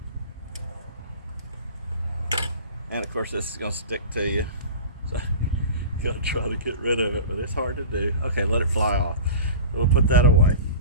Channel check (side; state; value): both; inverted; correlation -0.36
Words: And of course this is going to stick to you. So you'll try to get rid of it, but it's hard to do. Okay, let it fly off. We'll put that away.